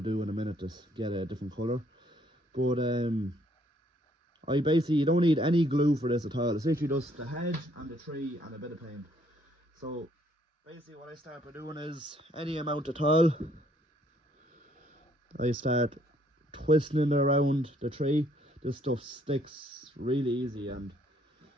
in a minute to get a different colour. But you don't need any glue for this at all. It's literally just the hedge and the tree and a bit of paint. So basically what I start by doing is any amount at all. I start twisting it around the tree. This stuff sticks really easy, and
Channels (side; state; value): both; normal; correlation 0.66